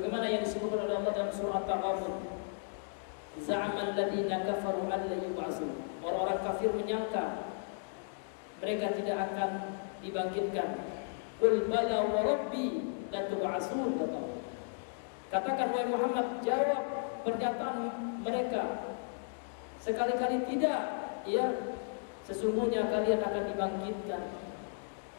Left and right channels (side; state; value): right; silent; digital silence